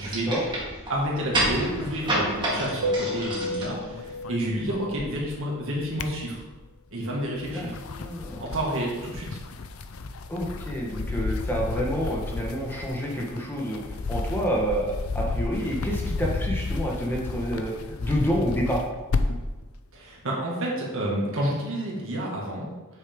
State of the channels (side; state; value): both; normal; correlation 0.51